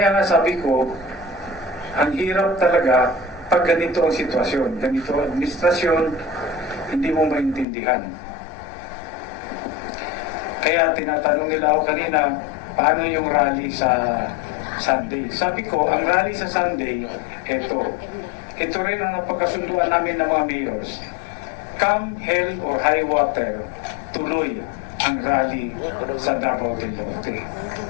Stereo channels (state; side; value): drops out; right; at 7.7 s